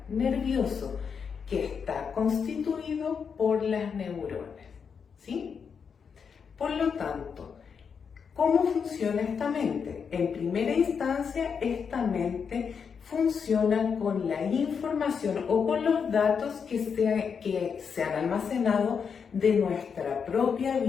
nervioso, que está constituido por las neuronas, ¿sí? Por lo tanto, ¿cómo funciona esta mente? En primera instancia, esta mente funciona con la información o con los datos que se han almacenado de nuestra propia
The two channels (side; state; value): right; quieter; 6.4 dB